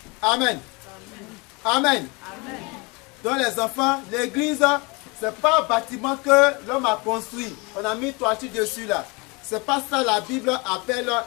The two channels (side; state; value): right; quieter; 28.1 dB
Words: Amen. Amen. Amen. Donc les enfants, l'église, c'est pas un bâtiment que l'homme a construit. On a mis toiture dessus là. C'est pas ça la Bible appelle